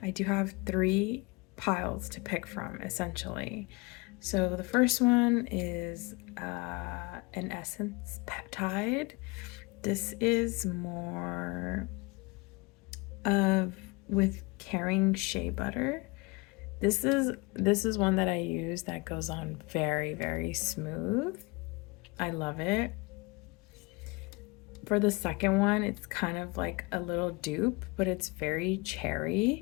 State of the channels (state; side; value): quieter; right; 27.1 dB